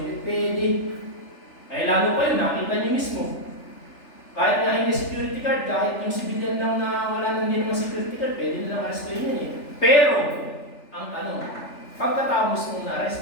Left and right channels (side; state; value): right; late; 3.4 ms